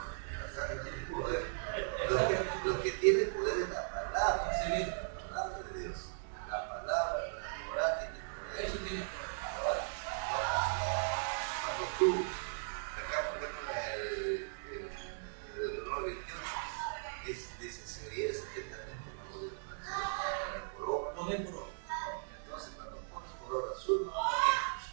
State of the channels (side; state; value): left; silent; digital silence